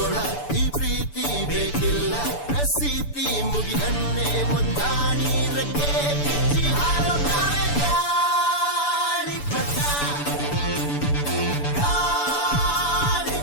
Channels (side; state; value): right; late; 6.9 ms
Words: ಈ ಪ್ರೀತಿ ಬೇಕಿಲ್ಲ, ಪ್ರಸಿದ್ಧಿ ಮುಗಿದನ್ನೇ ಮುಂದಾಡಿ ರೆಕ್ಕೆ ಬಿಚ್ಚಿ ಹಾರುತ್ತಾರೆ ಗಾಳಿಪಟ,